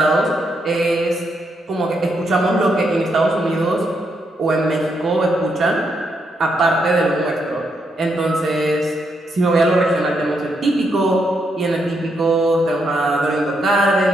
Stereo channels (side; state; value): both; normal; correlation 0.79